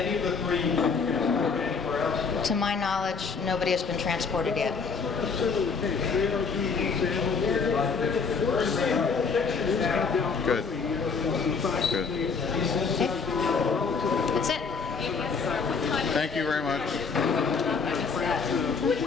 of the three been transported anywhere else? To my knowledge, nobody has been transported yet. Good. Good. That's it. Thank you very much.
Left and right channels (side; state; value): right; quieter; 5.2 dB